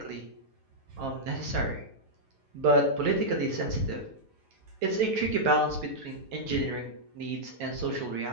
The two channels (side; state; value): left; late; 9.3 ms